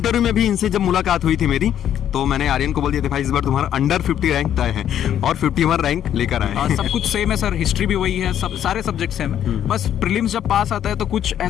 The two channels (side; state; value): right; quieter; 10.2 dB